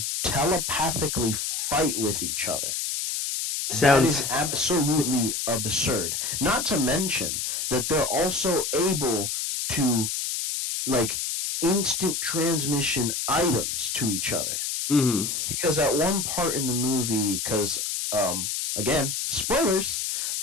telepathically fight with each other. That is absolutely absurd. Not to mention that they're also able to like instant transmission items to each other. Because at one part in the movie, because again, spoilers,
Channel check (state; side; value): noise; left; hiss, 2 dB below the sound